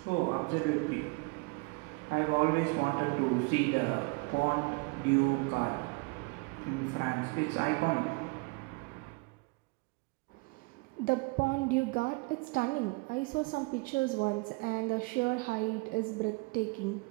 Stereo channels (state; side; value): quieter; left; 28.3 dB